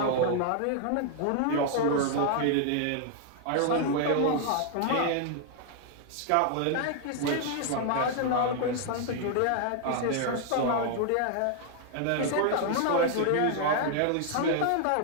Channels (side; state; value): both; different; correlation 0.00